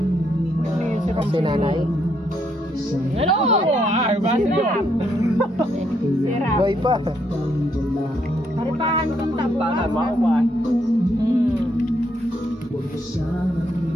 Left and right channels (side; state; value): both; normal; correlation 0.74